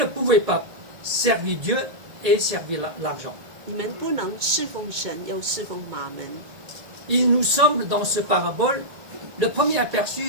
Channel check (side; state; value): left; late; 1.9 ms